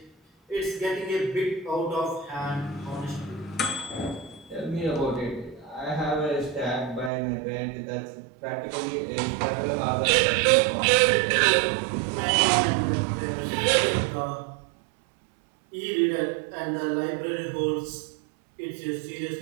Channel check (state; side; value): drops out; left; at 7.1 s